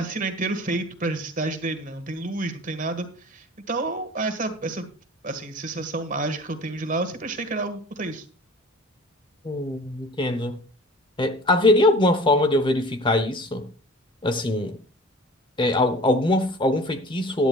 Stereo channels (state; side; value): normal; both; correlation 0.43